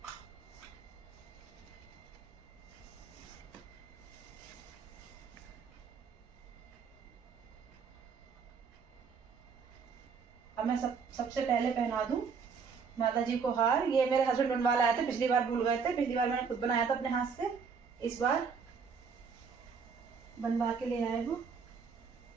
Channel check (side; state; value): left; quieter; 5.8 dB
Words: अब मैं सबसे पहले पहना दूं माता जी को हार। ये मेरे हस्बैंड बनवा लाए थे, पिछली बार भूल गए थे, पिछली बार मैंने खुद बनाया था अपने हाथ से, इस बार बनवा के ले आए वो।